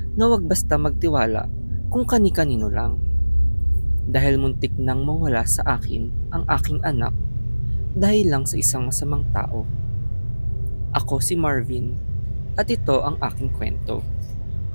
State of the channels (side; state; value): both; inverted; correlation -1.00